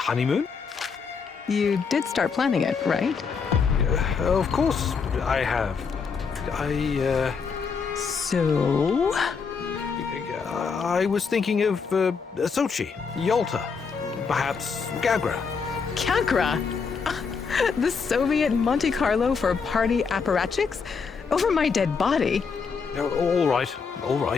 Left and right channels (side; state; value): right; quieter; 5.5 dB